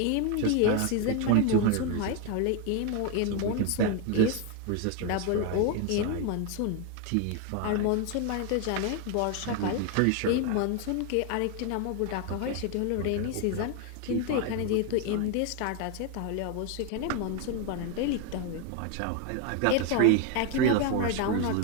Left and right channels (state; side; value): different; both; correlation 0.01